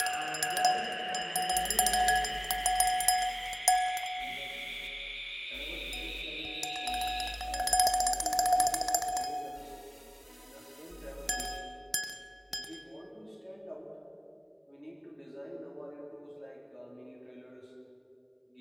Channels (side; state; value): both; identical; correlation 1.00